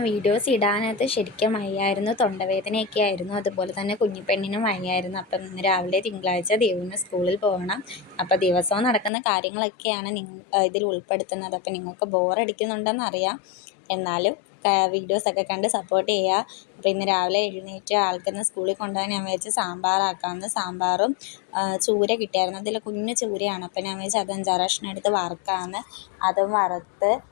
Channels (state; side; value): drops out; right; at 9.1 s